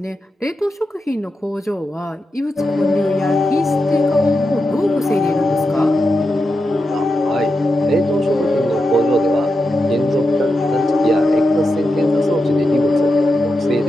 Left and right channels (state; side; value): normal; both; correlation 0.88